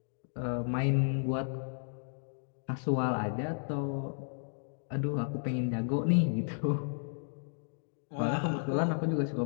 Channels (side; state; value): right; silent; digital silence